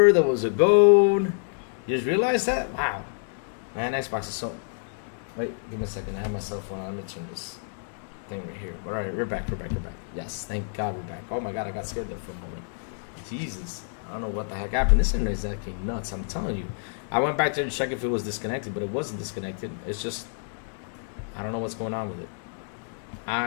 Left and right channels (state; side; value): silent; right; digital silence